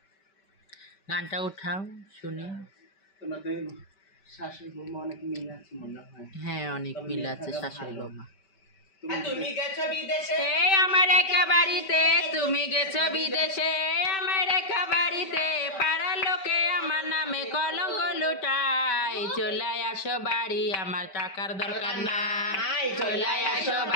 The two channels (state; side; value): late; right; 5.2 ms